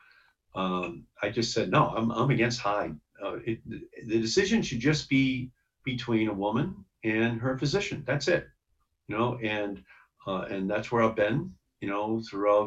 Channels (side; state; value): both; identical; correlation 1.00